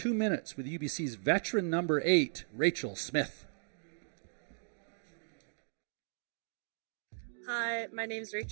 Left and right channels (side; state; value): left; silent; digital silence